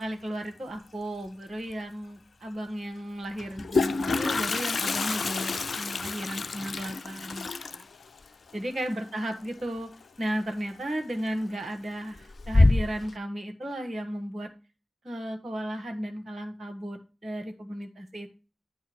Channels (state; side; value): normal; both; correlation 0.95